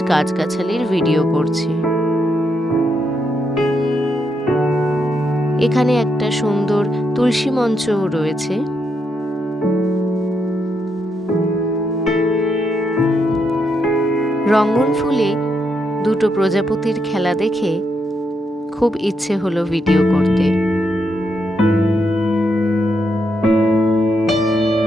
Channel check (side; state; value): both; normal; correlation 0.80